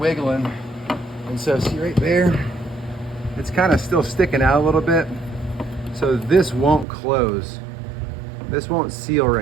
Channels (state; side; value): drops out; left; at 6.9 s